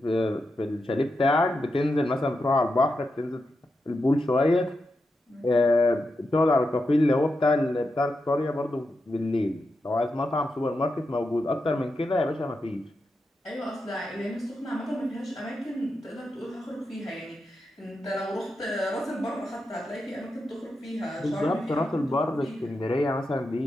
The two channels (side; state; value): both; normal; correlation 0.87